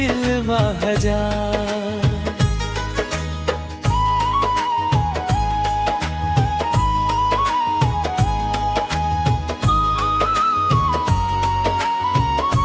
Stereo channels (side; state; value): both; identical; correlation 1.00